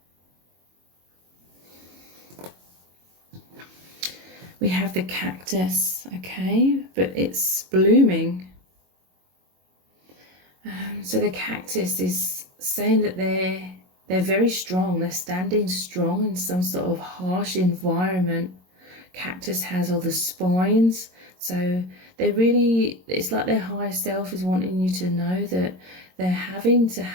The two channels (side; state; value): left; late; 22 ms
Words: We have the cactus, okay, but it's blooming. So the cactus is saying that they're They're very strong. They're standing strong in some sort of harsh environment. Cactus has all the spines, so they really, it's like their higher self is wanting you to know that they're having to